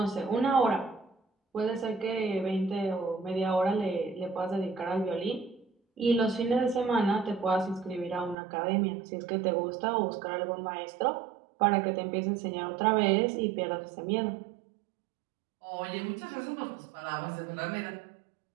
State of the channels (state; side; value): drops out; left; at 8.3 s